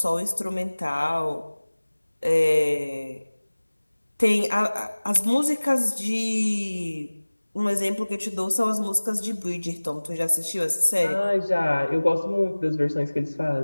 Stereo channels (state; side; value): inverted; both; correlation -1.00